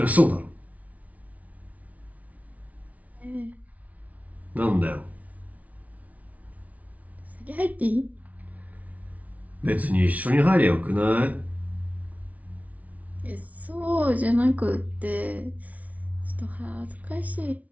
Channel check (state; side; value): late; left; 0.070 ms